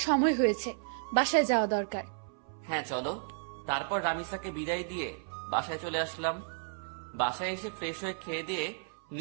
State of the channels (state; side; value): silent; left; 56 dB below the other